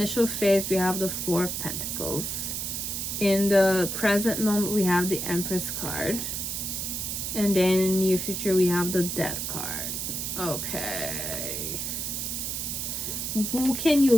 phase, we have the 4 of Pentacles. In the present moment, we have the Empress card. And then in the near future, we have the Death card. Okay. Who can you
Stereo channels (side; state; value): right; noise; hiss, 3 dB below the sound